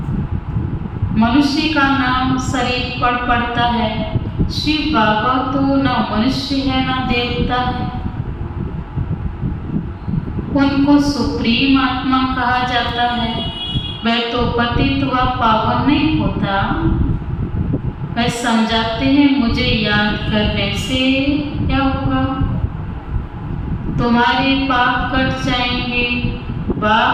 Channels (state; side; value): identical; both; correlation 1.00